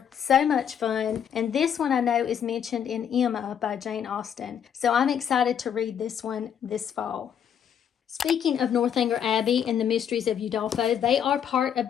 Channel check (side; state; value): right; quieter; 8.7 dB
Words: So much fun. And this one I know is mentioned in Emma by Jane Austen. So I'm excited to read this one this fall. Speaking of Northanger Abbey and the Mysteries of Udolpho, they are part of